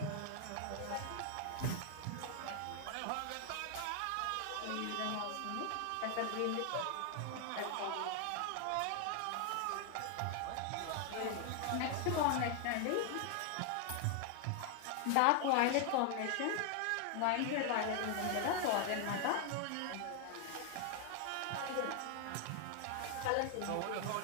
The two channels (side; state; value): both; different; correlation 0.00